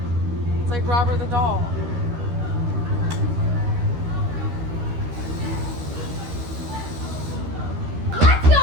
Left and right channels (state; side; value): late; left; 12 ms